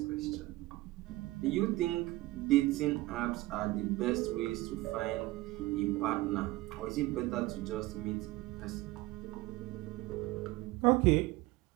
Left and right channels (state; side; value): quieter; left; 19.1 dB